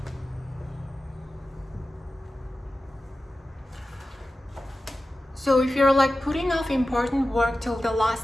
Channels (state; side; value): normal; both; correlation 0.94